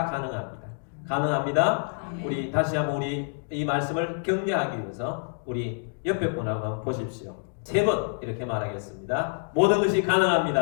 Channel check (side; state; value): right; silent; digital silence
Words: 가능합니다. 가능합니다. 우리 다시 한번 우리 이 말씀을 격려하기 위해서 우리 옆에 분하고 한번 보십시오. 3번 이렇게 말하겠습니다. 모든 것이